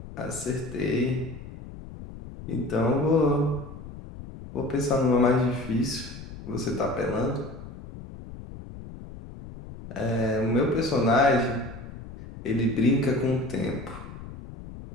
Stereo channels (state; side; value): noise; left; rumble, 13 dB below the sound